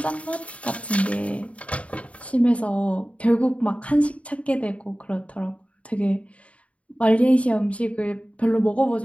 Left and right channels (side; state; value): right; late; 0.065 ms